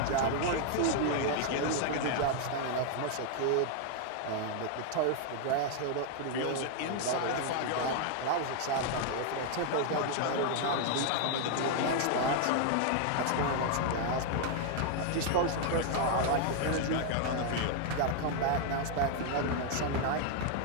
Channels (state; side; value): different; both; correlation 0.00